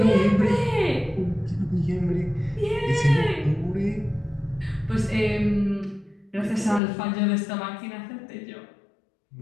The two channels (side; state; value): right; drops out; at 6.8 s